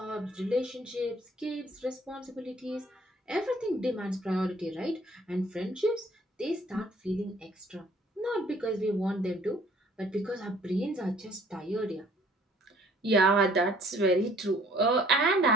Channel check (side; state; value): both; normal; correlation 0.57